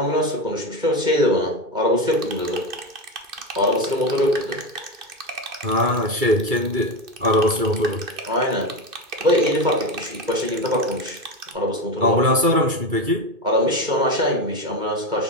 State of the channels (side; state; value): left; late; 2.3 ms